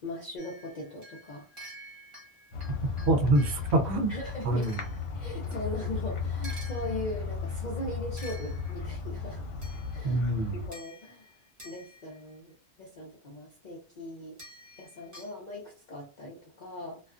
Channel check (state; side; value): normal; both; correlation 0.25